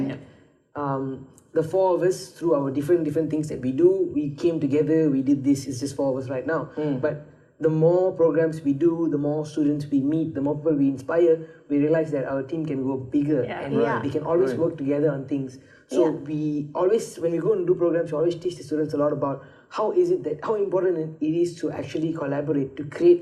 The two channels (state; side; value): identical; both; correlation 1.00